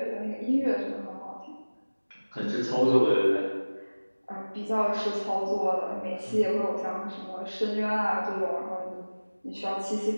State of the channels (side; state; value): both; inverted; correlation -1.00